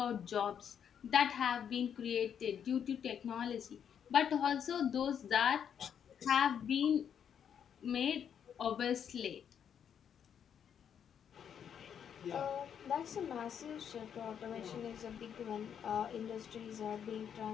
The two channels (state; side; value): quieter; right; 8.3 dB